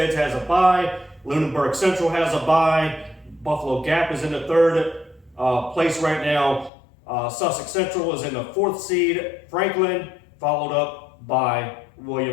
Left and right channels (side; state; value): right; drops out; at 6.7 s